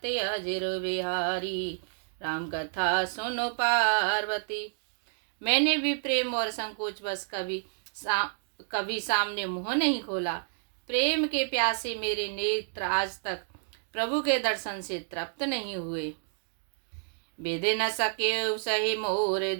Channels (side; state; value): left; silent; digital silence